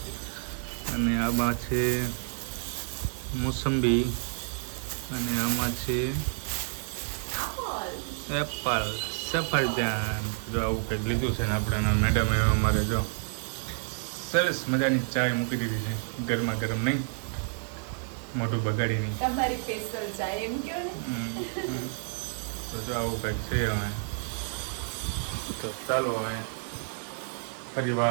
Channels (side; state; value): left; silent; digital silence